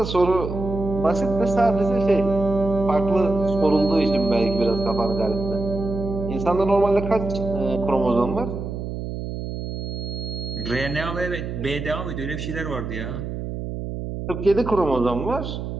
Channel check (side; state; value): right; noise; hum, 6 dB below the sound